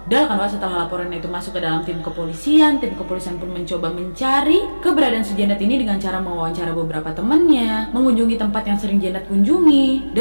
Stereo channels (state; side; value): inverted; both; correlation -1.00